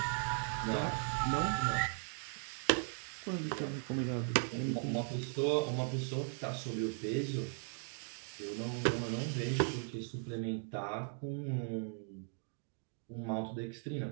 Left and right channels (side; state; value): left; silent; 52 dB below the other